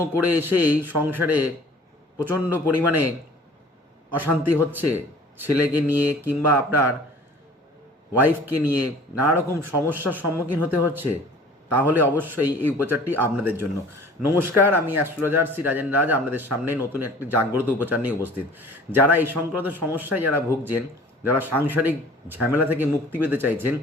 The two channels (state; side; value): normal; both; correlation 0.48